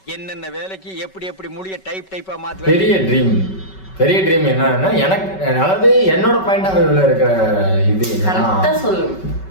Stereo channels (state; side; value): late; right; 5.3 ms